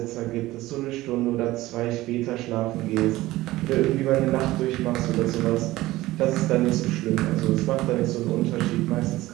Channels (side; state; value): left; quieter; 17.5 dB